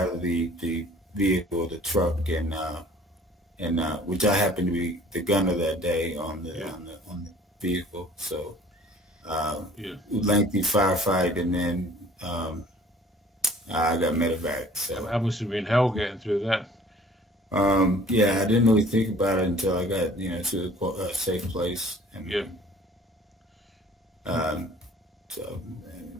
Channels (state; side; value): normal; both; correlation 0.52